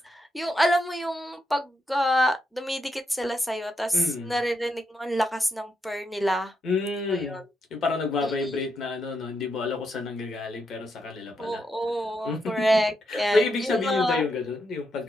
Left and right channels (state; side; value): normal; both; correlation 0.82